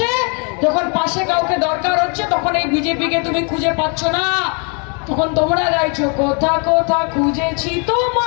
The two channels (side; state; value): right; quieter; 36.2 dB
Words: যখন পাশে কাউকে দরকার হচ্ছে, তখন এই বিজেপিকে তুমি খুঁজে পাচ্ছ না, তখন তোমরা গাইছো কোথা কোথা খুঁজেছি